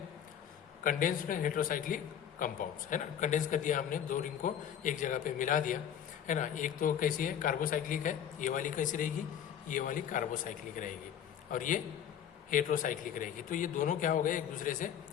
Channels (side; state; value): right; quieter; 9.3 dB